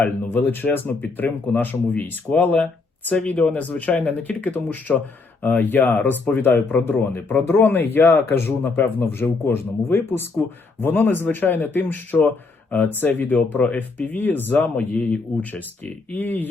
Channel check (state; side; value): quieter; right; 3.9 dB